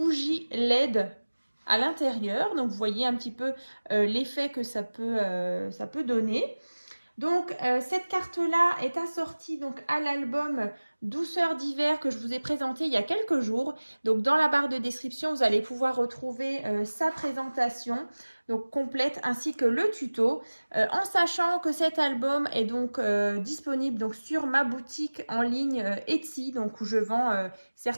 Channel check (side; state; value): both; inverted; correlation -1.00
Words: LED à l'intérieur. Donc vous voyez un petit peu l'effet que ça peut donner. Donc cette carte-là est assortie donc à l'album Douceur d'hiver que je vous ai présenté il y a quelques jours. Donc dans la barre de description, vous allez pouvoir retrouver sa présentation donc complète ainsi que le tuto. En sachant que cet album est donc disponible donc sur ma boutique en ligne Etsy, donc où je vends